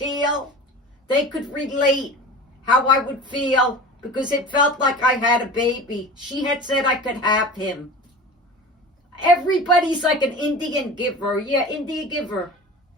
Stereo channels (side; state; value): both; normal; correlation 0.36